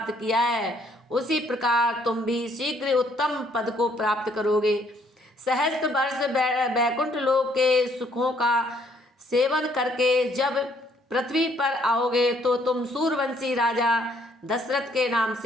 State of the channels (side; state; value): both; normal; correlation 0.66